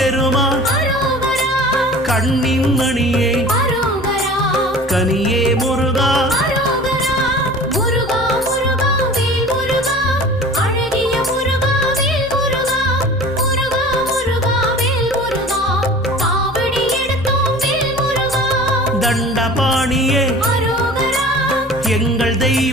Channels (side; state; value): both; normal; correlation 0.41